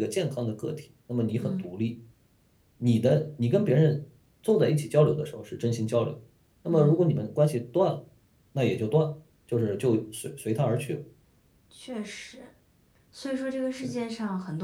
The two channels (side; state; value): both; identical; correlation 1.00